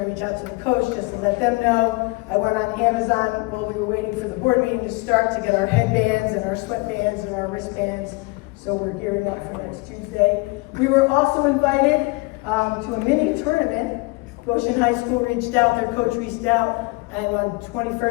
to reach out to the coach just let them know. I went on Amazon while we were waiting for the board meeting to start to get our headbands and our sweatbands and our wristbands. So we're gearing up for next Tuesday. We were also invited to a mini tournament. Goshen High School reached out, their coach reached out, and on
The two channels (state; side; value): quieter; right; 26.0 dB